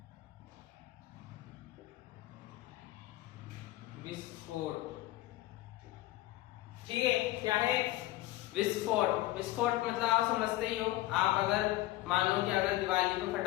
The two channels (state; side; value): quieter; right; 16.9 dB